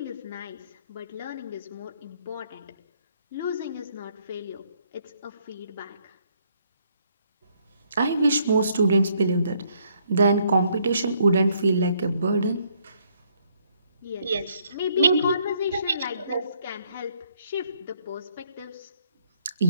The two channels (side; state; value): both; inverted; correlation -0.69